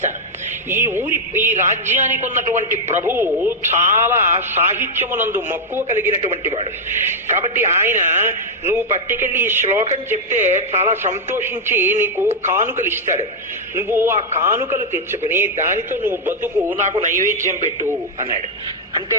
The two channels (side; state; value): both; normal; correlation -0.02